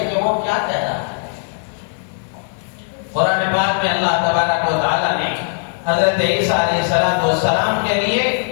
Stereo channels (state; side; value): silent; right; digital silence